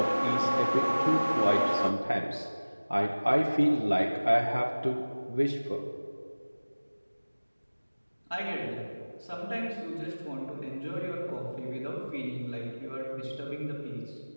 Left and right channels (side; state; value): both; inverted; correlation -1.00